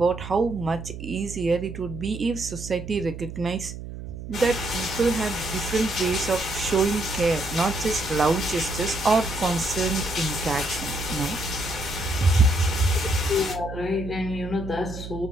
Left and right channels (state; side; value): noise; right; hum, 10 dB below the sound